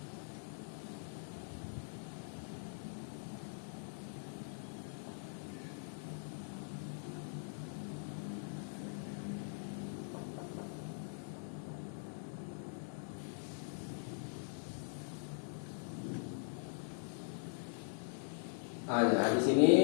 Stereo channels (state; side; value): silent; right; digital silence